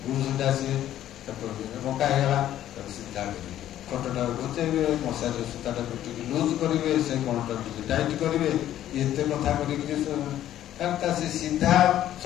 ଗୁରୁ ସେଟା ଆସିବେ, ବଙ୍କା ହେଇଗଲା, ତାକୁ ସିଧା କରିବେ, ଖଟଟା ଘୁଞ୍ଚେଇବେ, ମଶାରୀର ସୂତାଟାକୁ ଟିକେ ଲୁଜ କରିବେ, ସେ କଣଟାକୁ ଟିକେ ଟାଇଟ୍ କରିବେ, ଏତେ କଥା କରିକି ସେ ସିଧା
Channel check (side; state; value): right; quieter; 12.2 dB